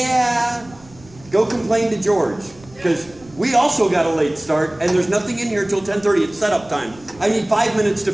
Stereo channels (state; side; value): noise; right; rumble, 24 dB below the sound